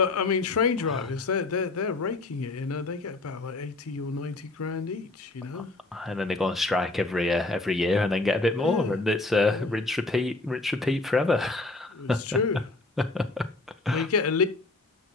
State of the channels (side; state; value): right; quieter; 3.1 dB